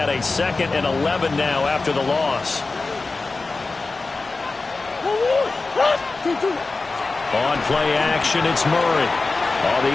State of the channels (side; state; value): right; quieter; 3.7 dB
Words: a second and 11 now after the loss. On play action, it's Murray. Oh, the